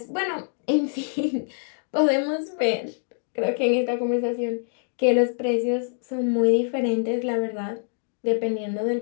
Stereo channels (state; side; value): silent; right; digital silence